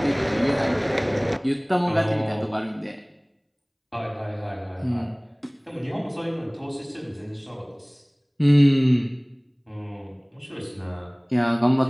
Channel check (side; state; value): both; identical; correlation 1.00